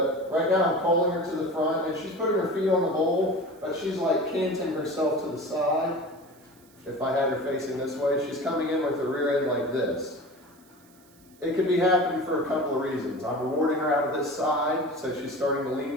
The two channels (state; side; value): noise; right; hiss, 29 dB below the sound